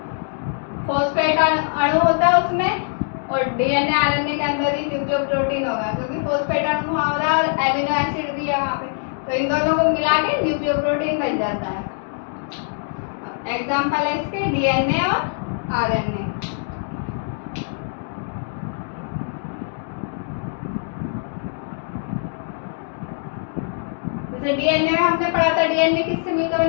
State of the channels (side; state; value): right; silent; digital silence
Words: फॉस्फेट अणु होता है उसमें, और डीएनए आरएनए के अंदर ही न्यूक्लियोप्रोटीन होगा, क्योंकि फॉस्फेट अणु वहाँ हो रहा है और एमिनो एसिड भी है वहाँ पे, तो इन दोनों को मिला के न्यूक्लियोप्रोटीन बन जाता है। एग्जाम्पल है इसके डीएनए और आरएनए। जैसे डीएनए में हमने पढ़ा था, डीएनए किससे मिलकर